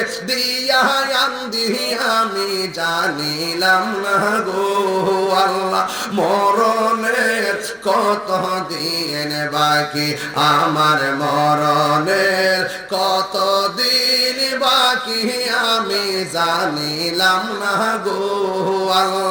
দিয়া আন্দি আমি জানিলাম না গো আল্লাহ, মরণের কত দিন বাকি, আমার মরণের কত দিন বাকি আমি জানিলাম না গো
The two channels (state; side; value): identical; both; correlation 1.00